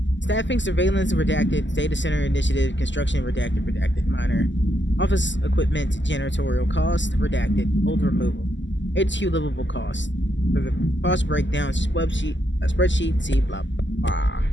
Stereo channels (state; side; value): late; right; 0.54 ms